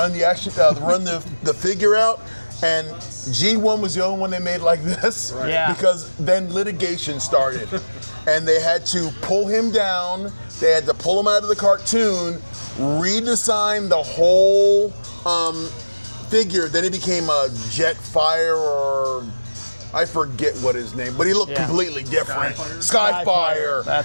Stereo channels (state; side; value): inverted; both; correlation -1.00